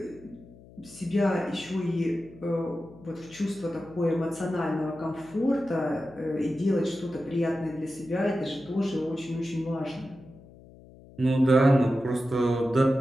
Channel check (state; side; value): noise; left; hum, 21 dB below the sound